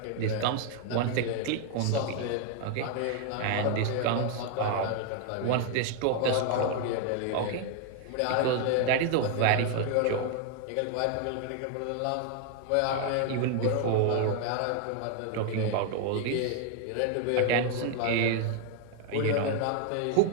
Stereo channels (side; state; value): both; different; correlation 0.00